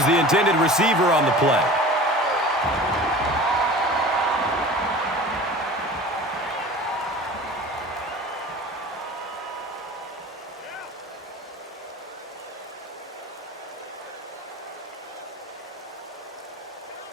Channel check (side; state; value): both; normal; correlation 0.39